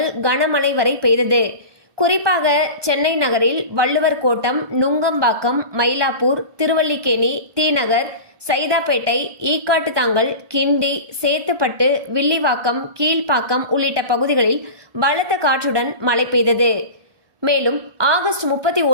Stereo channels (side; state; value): left; late; 1.2 ms